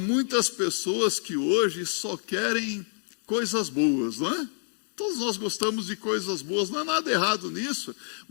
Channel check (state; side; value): silent; right; digital silence